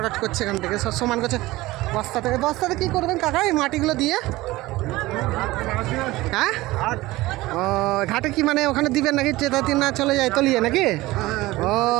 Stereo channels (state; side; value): quieter; left; 18.9 dB